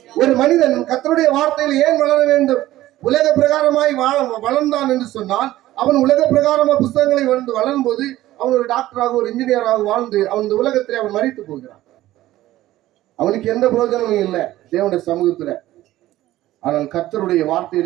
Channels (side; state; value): left; quieter; 15.3 dB